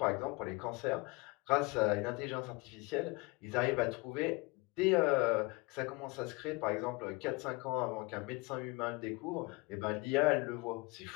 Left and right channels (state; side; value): quieter; right; 26.3 dB